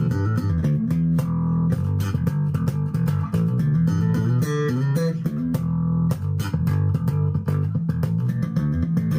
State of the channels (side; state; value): both; identical; correlation 1.00